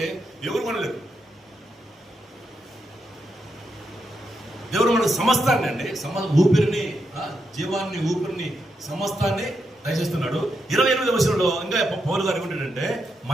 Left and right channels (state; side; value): normal; both; correlation 0.83